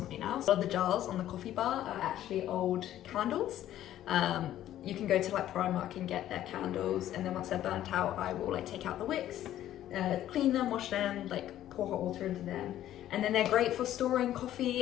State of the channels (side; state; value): right; quieter; 12.6 dB